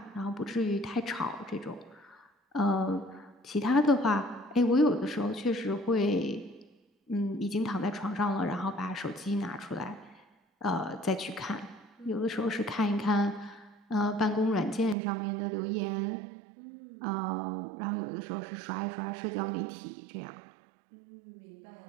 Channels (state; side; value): drops out; left; at 15.0 s